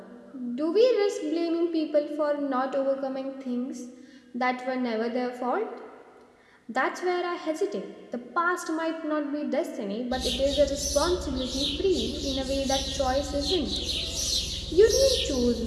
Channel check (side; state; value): both; identical; correlation 1.00